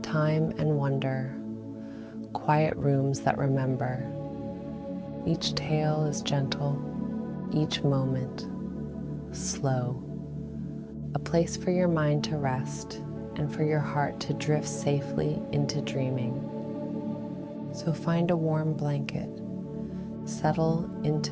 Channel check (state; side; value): identical; both; correlation 1.00